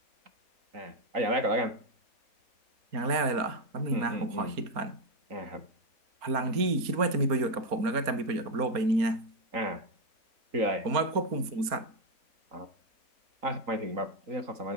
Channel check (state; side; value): late; left; 4.3 ms